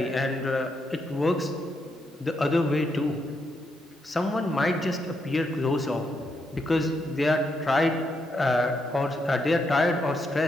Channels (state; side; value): normal; both; correlation 0.80